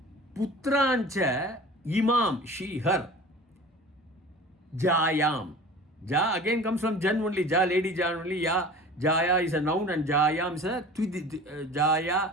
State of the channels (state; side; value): normal; both; correlation 0.40